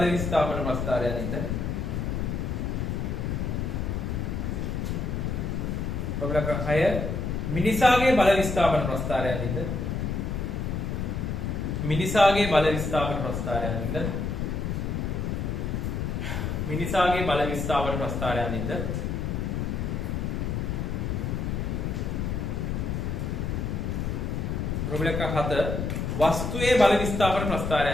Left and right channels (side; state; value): left; noise; rumble, 1 dB below the sound